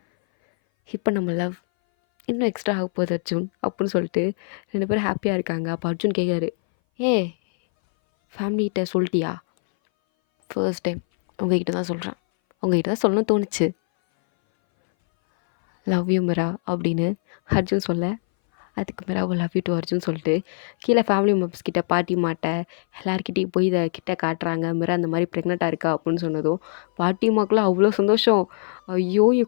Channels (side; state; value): right; silent; 60 dB below the other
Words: இப்போ நம்ம லவ் இன்னும் எக்ஸ்ட்ரா ஆக போகுது அர்ஜுன் அப்படின்னு சொல்லிட்டு 2 பேரும் ஹாப்பியாக இருக்காங்க. அப்போ அர்ஜுன் கேட்குறாரு, ஃபேமிலிகிட்ட சொல்லிட்டியா? ஃபர்ஸ்ட் டைம் உங்ககிட்ட தான் சொல்கிறேன், உங்ககிட்ட தான் சொல்லணும்னு தோணுச்சு, லவ் யூ மிரா அப்படின்னு அர்ஜுன் சொல்ல அதுக்கு மேலே லவ் யூ டு அர்ஜுன் சொல்லிட்டு கீழே ஃபேமிலி மெம்பர்ஸ் கிட்ட பாட்டிமாட்ட எல்லாருக்கிட்டையும் போய் இதை கிட்ட காட்டுறாங்க. மிரா அந்த மாதிரி ப்ரெக்னெண்ட்டாக இருக்கா அப்படின்னு சொன்னதும் பாட்டிமாக்கெலாம் அவ்வளோ சந்தோஷம். ஐயோ!